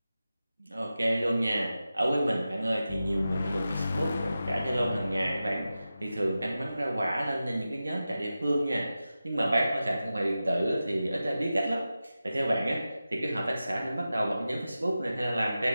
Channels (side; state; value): both; inverted; correlation -0.93